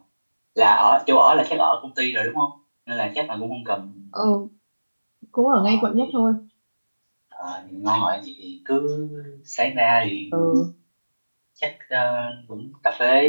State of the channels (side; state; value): both; inverted; correlation -1.00